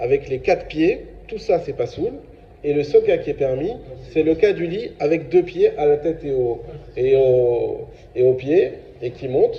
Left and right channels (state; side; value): identical; both; correlation 1.00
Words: les 4 pieds, tout ça c'est pas soul. Et le seul cas qui est permis, c'est le cas du lit avec 2 pieds à la tête et aux pieds, et qui